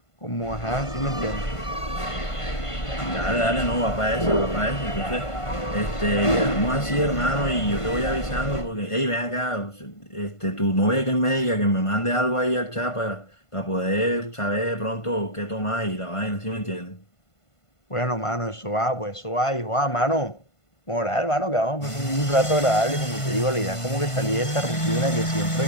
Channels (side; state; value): right; late; 1.5 ms